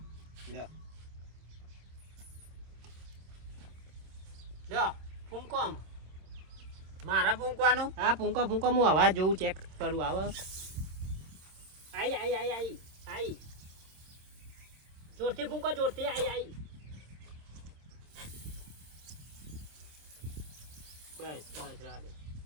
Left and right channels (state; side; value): late; left; 26 ms